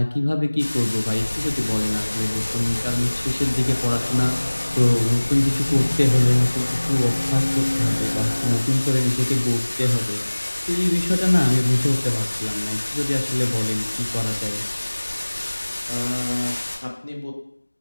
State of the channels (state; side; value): inverted; both; correlation -1.00